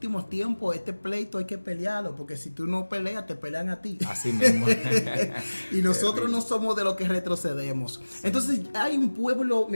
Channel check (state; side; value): inverted; both; correlation -1.00